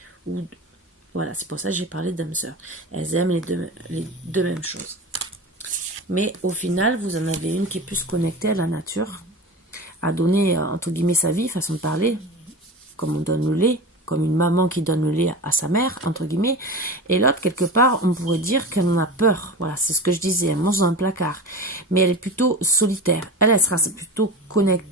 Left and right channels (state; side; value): normal; both; correlation 0.30